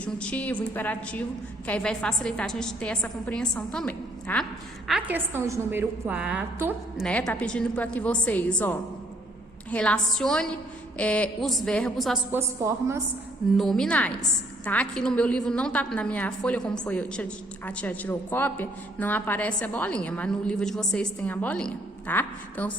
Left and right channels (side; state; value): both; normal; correlation 0.66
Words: imperativo, que aí vai facilitar a gente ter essa compreensão também, tá? A questão de número 4, né? Tá pedindo para que vocês, relacione os verbos às suas formas nominais, tá? Aqui no meu livro não tá, na minha folha, como foi, a tia tirou cópia, não aparece a bolinha, mas no livro de vocês tem a bolinha, tá? Então,